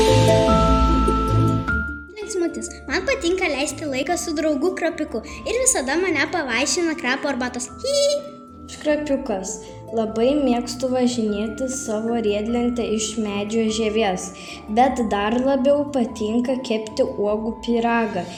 Linksmutis. Man patinka leisti laiką su draugu Krapiuku ir visada mane pavaišina krapo arbatos. Aš Krapiukas. Labai mėgstu važinėti savo riedlentę iš medžio žievės, bet dar labiau patinka kepti uogų pyragą.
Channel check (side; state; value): both; identical; correlation 1.00